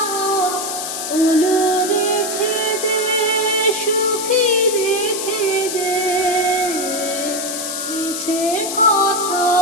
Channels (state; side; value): noise; left; hiss, 4 dB below the sound